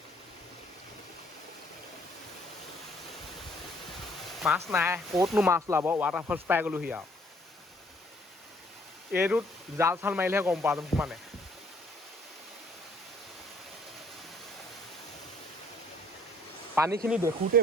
মাছ নাই ক'তনো মাছ ওলাব ৱাটাৰফলছ পাই গ'লোহি আৰু এইটোত জাল চাল মাৰিলেহে গম পোৱা যাব মানে পানীখিনি দেখোঁতে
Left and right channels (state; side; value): normal; both; correlation 0.62